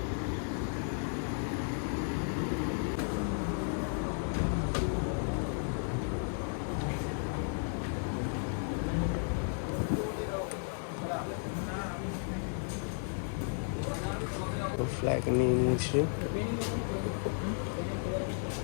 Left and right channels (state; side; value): silent; right; 55 dB below the other